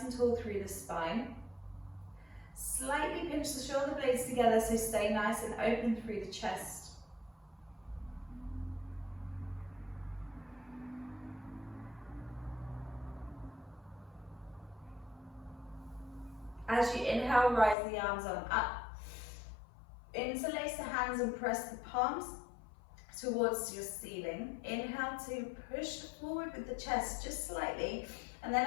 and tall through the spine. Slightly pinch the shoulder blades together, so stay nice and open through the chest. As you inhale, rise the arms on up. Interlace the hands and press the palms towards your ceiling. Inhale to push forward with the chest just slightly, and then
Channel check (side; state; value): right; drops out; at 17.8 s